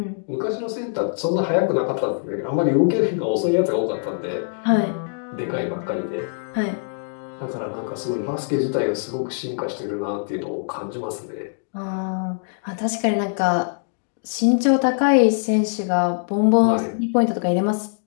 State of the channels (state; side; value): silent; right; digital silence